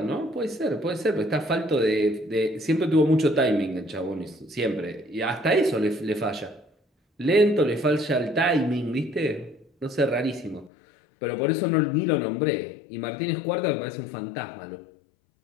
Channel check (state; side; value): drops out; right; at 10.7 s